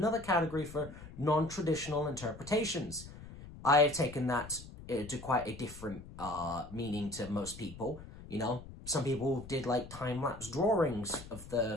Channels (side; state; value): left; noise; rumble, 15 dB below the sound